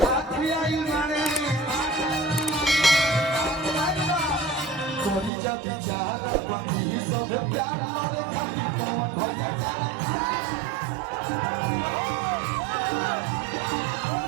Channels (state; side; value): drops out; left; at 5.3 s